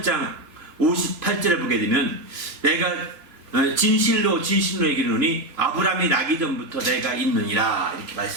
58절에 보게 되면 내가 진실로 얘기하노니 아브라함이 나기 전부터 내가 있느니라 이렇게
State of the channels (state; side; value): late; left; 3.0 ms